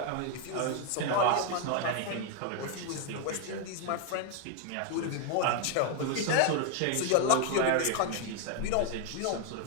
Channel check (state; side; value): different; both; correlation 0.00